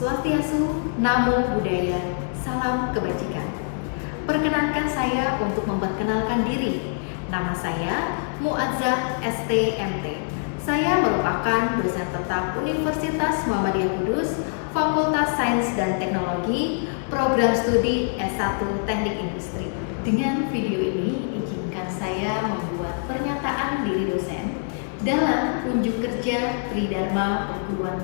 Namo Buddhaya, salam kebajikan. Perkenankan saya untuk memperkenalkan diri. Nama saya Muazzah STMT. Saya merupakan dosen tetap Universitas Muhammadiyah Kudus, Fakultas Sains dan Teknologi, Program Studi S1 Teknik Industri. Dengan video ini, izinkan saya membuat pernyataan diri dosen dalam unjuk kerja Tridharma Perguruan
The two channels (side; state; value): right; silent; digital silence